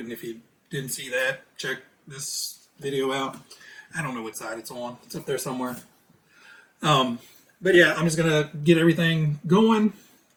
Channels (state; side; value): identical; both; correlation 1.00